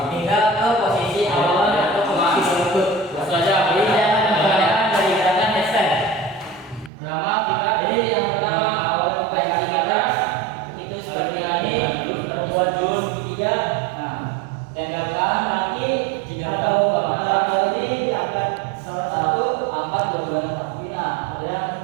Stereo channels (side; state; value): left; drops out; at 6.9 s